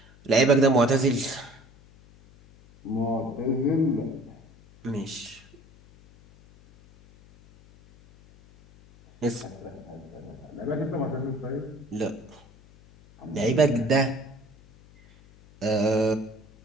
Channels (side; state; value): left; noise; hum, 25 dB below the sound